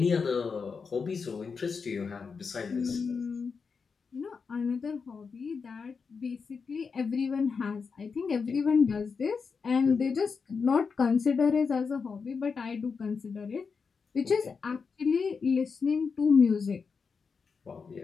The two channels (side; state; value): right; quieter; 5.4 dB